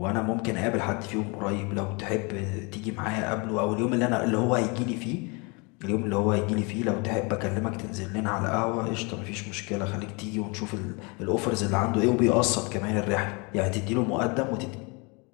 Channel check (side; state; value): right; quieter; 30.0 dB